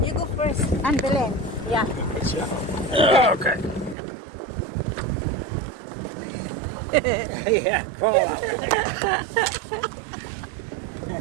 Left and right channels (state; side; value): drops out; left; at 4.0 s